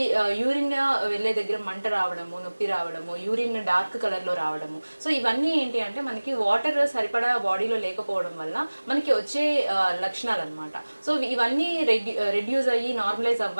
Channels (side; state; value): both; inverted; correlation -1.00